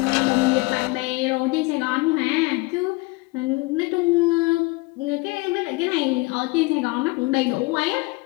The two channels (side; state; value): right; quieter; 24.0 dB